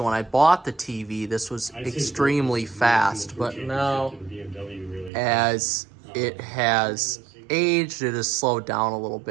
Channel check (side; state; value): left; drops out; at 5.1 s